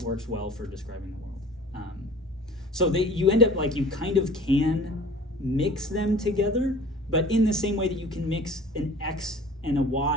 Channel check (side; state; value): both; normal; correlation 0.45